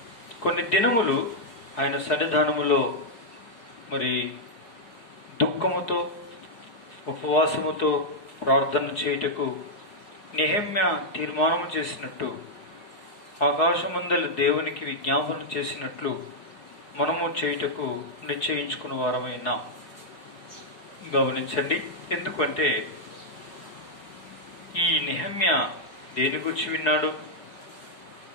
కొన్ని దినములు ఆయన సన్నిధానములో మరి దుఃఖముతో ఉపవాసముతో ప్రార్థన చేయుటకు నెహెమ్యా తీర్మానం చేసినట్టు, ఆకాశమందలి దేవునికి విజ్ఞాపన చేసినట్లు మనము చేయుటకు నిశ్చయించుకున్న వారమైనా గమనించండి. ఎందుకంటే ఈ నెహెమ్యా దేని గురించి విన్నాడు?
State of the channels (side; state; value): right; late; 4.7 ms